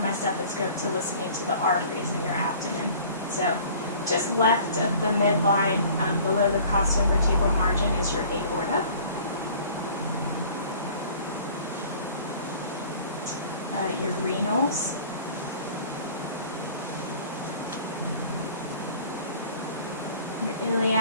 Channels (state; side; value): inverted; both; correlation -0.48